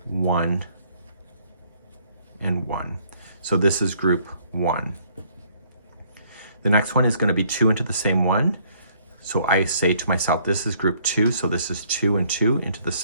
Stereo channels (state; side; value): inverted; both; correlation -0.63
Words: 1 and 1. So this is group 1. The next one is going to be 2 into the same one. So I say to myself, this is group 2, so this is 2 and 2 into the